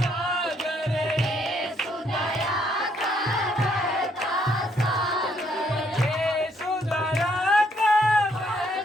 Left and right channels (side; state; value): both; normal; correlation 0.70